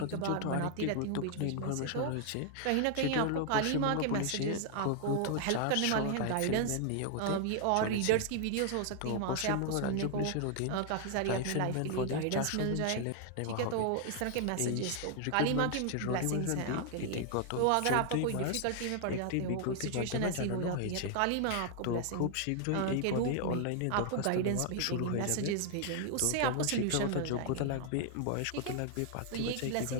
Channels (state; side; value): different; both; correlation 0.00